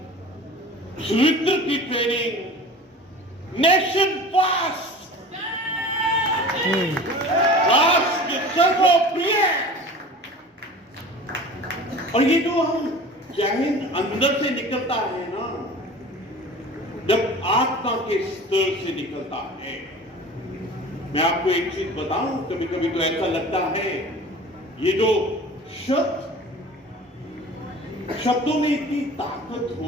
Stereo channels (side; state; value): both; normal; correlation 0.40